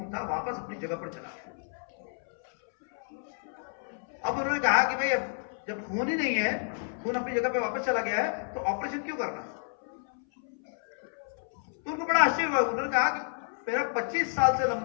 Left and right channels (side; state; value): right; silent; 58 dB below the other